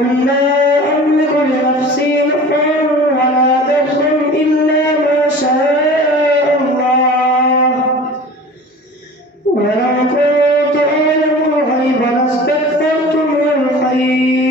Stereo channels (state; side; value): normal; both; correlation 0.40